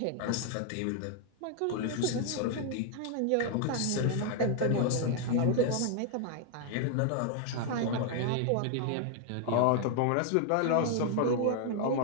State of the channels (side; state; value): both; different; correlation 0.00